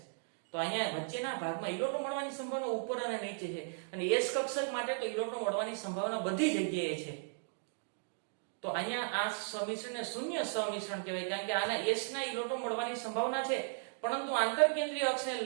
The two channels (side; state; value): left; silent; digital silence